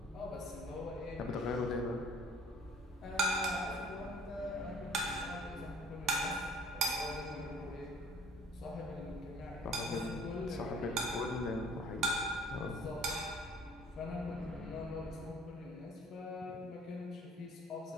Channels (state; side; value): normal; both; correlation 0.51